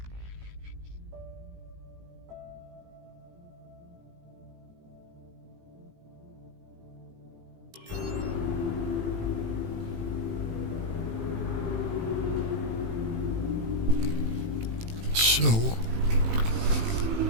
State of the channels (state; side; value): late; left; 18 ms